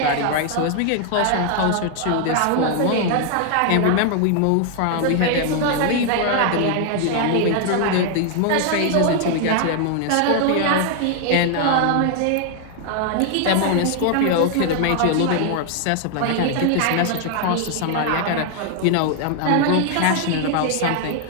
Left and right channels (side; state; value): both; different; correlation 0.00